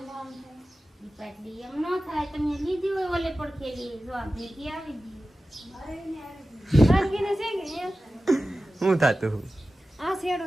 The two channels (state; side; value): normal; both; correlation 0.95